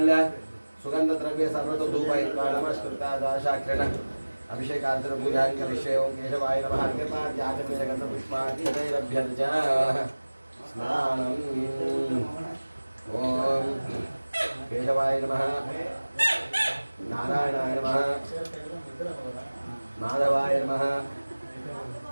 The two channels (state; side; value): inverted; both; correlation -1.00